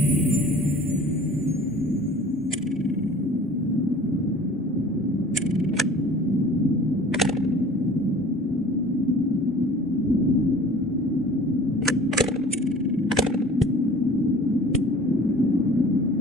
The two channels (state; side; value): normal; both; correlation 0.46